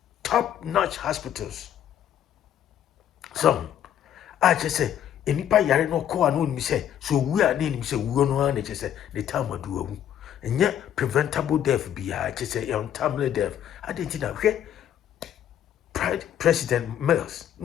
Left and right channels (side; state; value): right; quieter; 10.3 dB